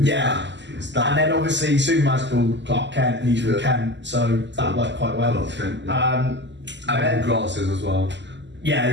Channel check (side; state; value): left; late; 0.52 ms